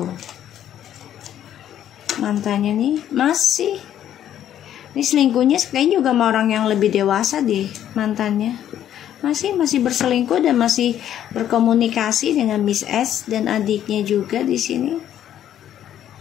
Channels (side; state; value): right; quieter; 10.9 dB